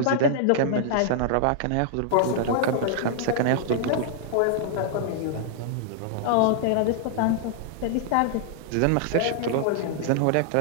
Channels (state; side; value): different; both; correlation -0.01